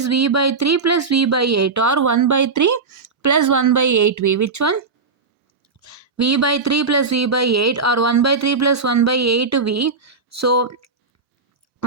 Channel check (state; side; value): quieter; left; 4.5 dB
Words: V by 3 plus V by 8, or 1 by 3 plus 1 by 8V. Which one? V by 3 plus V by 8, or 1 by 3 plus 1 by 8V. So